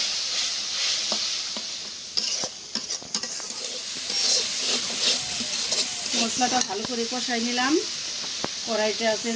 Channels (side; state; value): both; identical; correlation 1.00